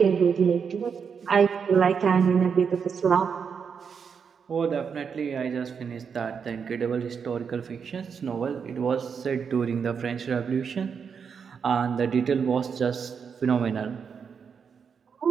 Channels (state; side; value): quieter; left; 6.5 dB